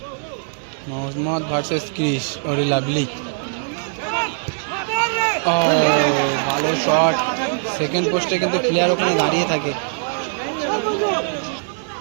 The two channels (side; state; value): left; silent; 63 dB below the other